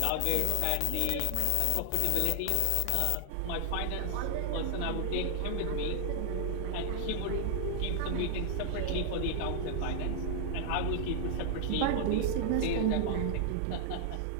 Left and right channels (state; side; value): different; both; correlation 0.00